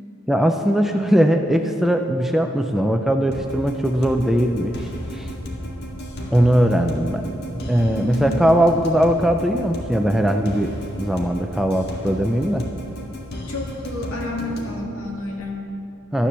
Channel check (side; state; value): both; normal; correlation 0.85